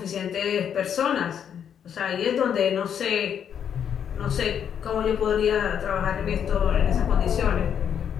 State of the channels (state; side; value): quieter; right; 8.5 dB